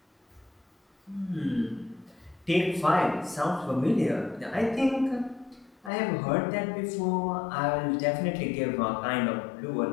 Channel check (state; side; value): drops out; right; at 5.9 s